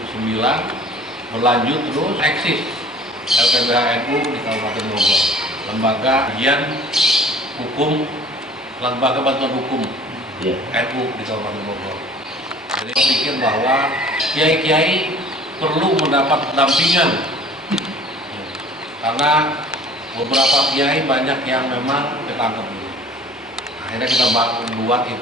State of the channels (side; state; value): both; normal; correlation 0.48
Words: berlanjut terus eksis LPBH NU di Kabupaten Bogor, lembaga kajian hukum, lembaga bantuan hukum NU di Kabupaten Bogor. Jadi saya pikir bahwa kiai-kiai perlu mendapat pendampingan karena beberapa kiai banyak yang memang ketangkep dulu. Akhirnya kita buat